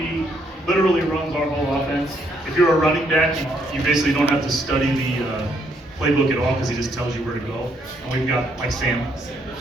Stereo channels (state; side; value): normal; both; correlation 0.72